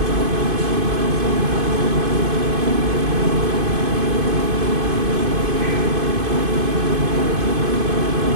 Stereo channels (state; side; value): late; left; 2.5 ms